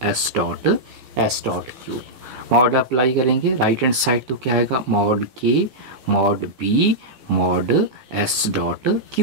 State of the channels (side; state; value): left; late; 15 ms